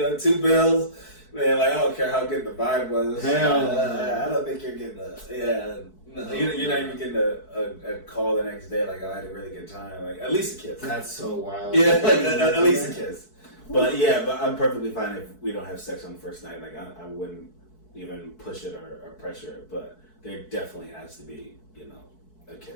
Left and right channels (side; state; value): right; late; 4.6 ms